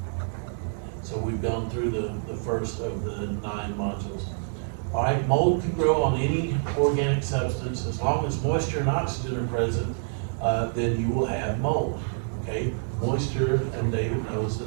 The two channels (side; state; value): left; silent; digital silence